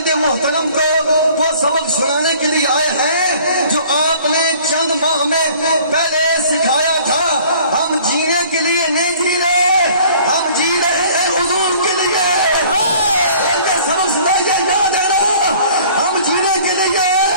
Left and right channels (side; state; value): both; inverted; correlation -0.52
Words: محترم کو وہ سبق سنانے کے لیے آئے ہیں جو آپ نے چند ماہ میں پہلے سکھایا تھا۔ ہم جینے کے لیے نہیں جی رہے، ہم جی رہے ہیں حضور کے لیے۔ سبق سنائیے، یاد ہے نا، ہم جینے کے لیے،